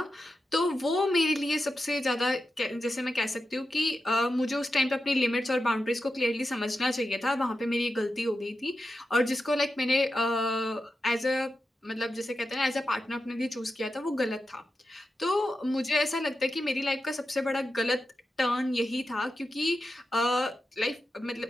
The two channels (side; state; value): both; normal; correlation 0.90